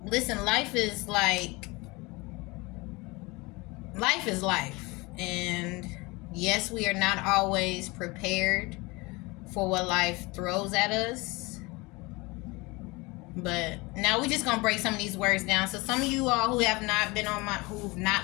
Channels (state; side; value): quieter; right; 24.4 dB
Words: listen, life is life, and yes, we are not always prepared for what life throws at us. But now we're just gonna break some of these words down. So some of you all who've